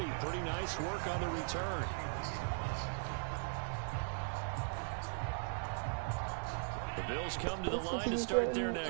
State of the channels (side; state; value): left; silent; digital silence